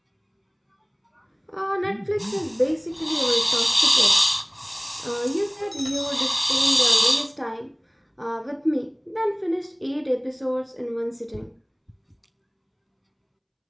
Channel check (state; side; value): identical; both; correlation 1.00